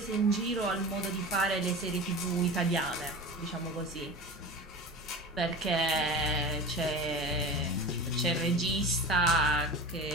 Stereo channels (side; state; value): both; normal; correlation 0.32